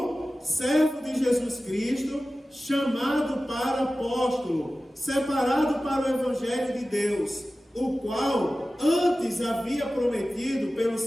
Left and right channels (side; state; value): both; normal; correlation 0.96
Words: servo de Jesus Cristo, chamado para apóstolo, separado para o evangelho de Deus, o qual antes havia prometido pelos